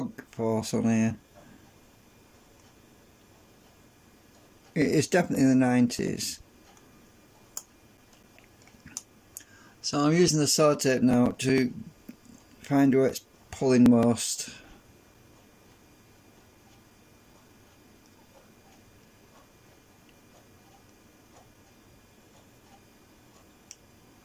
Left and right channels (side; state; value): both; identical; correlation 1.00